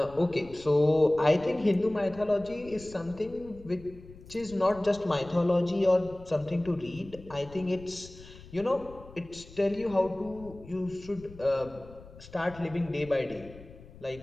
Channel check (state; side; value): noise; left; rumble, 19 dB below the sound